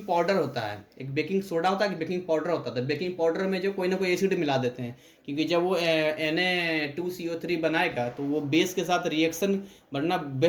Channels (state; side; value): identical; both; correlation 1.00